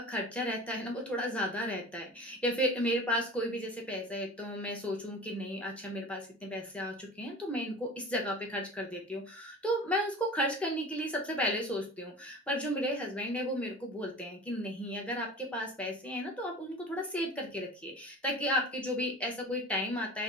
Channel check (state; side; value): normal; both; correlation 0.37